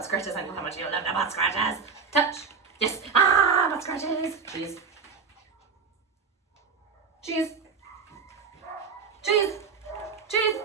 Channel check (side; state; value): left; quieter; 5.6 dB